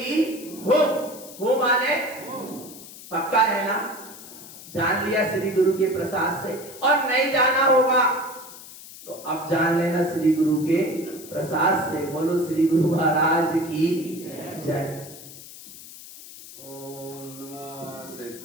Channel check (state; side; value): noise; left; hiss, 16 dB below the sound